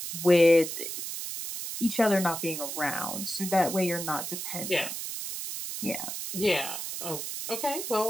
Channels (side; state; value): right; noise; hiss, 6 dB below the sound